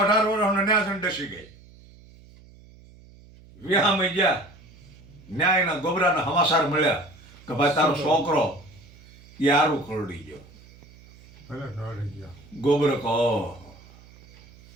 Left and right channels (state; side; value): noise; right; hum, 23 dB below the sound